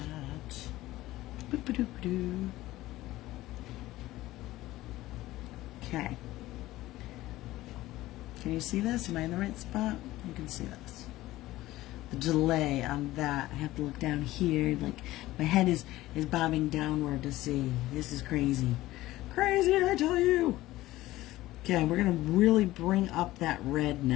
okay. Can you see this? Am I in the right spot? You can see this. The delay on that. I have to look down here. Like my head is bobbing downward to see. This is crazy. Crazy, I tell you. Okay, we're gonna really bring up that red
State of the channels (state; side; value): quieter; right; 16.8 dB